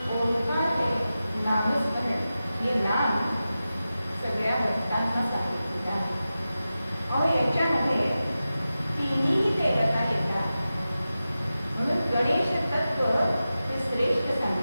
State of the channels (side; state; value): both; inverted; correlation -0.93